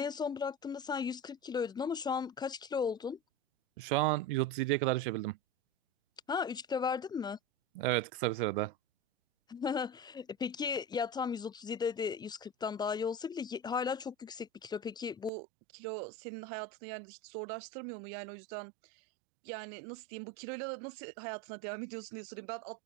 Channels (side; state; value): left; drops out; at 15.3 s